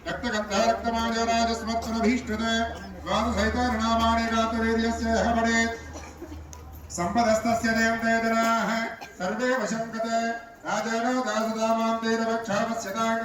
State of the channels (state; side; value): identical; both; correlation 1.00